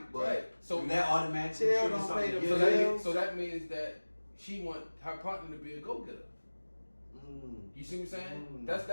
but Right. So that automatically Chill triggers don't something pay the to bill. get so that means that she want her partner to be a go-getter. You see what I'm saying?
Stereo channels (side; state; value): both; inverted; correlation -1.00